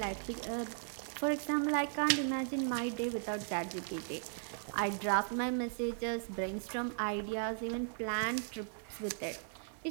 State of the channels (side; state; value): left; silent; 53 dB below the other